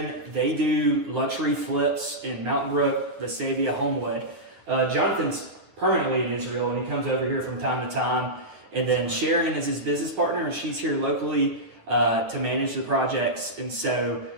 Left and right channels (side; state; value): left; late; 9.6 ms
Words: they do luxury flips in Mountain Brook, Vestavia, Homewood. Jonathan's permanently in Israel, and he comes over here from time to time. And then Sharon is his business partner, and she's here locally to manage the projects. And so